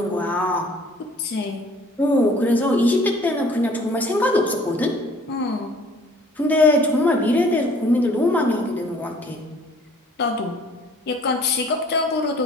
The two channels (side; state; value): both; normal; correlation 0.55